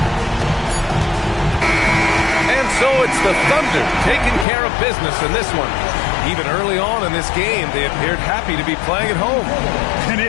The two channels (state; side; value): drops out; right; at 4.5 s